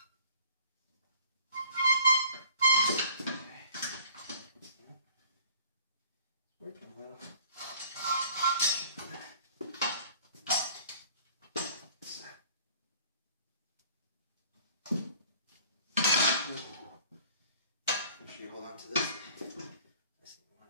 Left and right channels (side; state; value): both; inverted; correlation -0.52